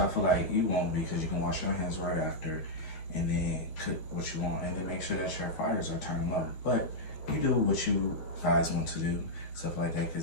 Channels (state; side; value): late; right; 13 ms